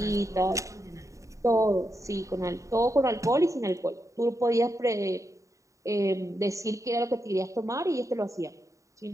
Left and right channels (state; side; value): late; left; 0.16 ms